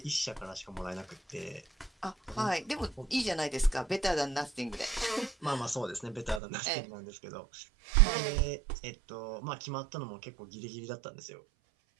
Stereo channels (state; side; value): drops out; left; at 6.4 s